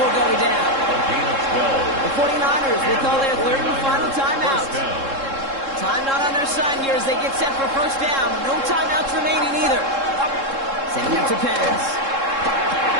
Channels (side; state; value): left; late; 3.7 ms